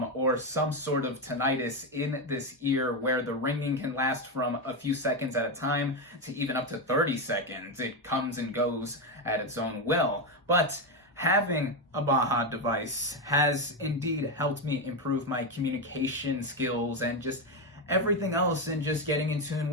or some sort of tinnitus in this ear where the ringing can last from a few seconds at a time to even up to 30 seconds. It comes and goes at its own will. But having a BAHA device has indeed helped me improve my communication skills and just everything else, and just getting in tune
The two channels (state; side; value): normal; both; correlation 0.09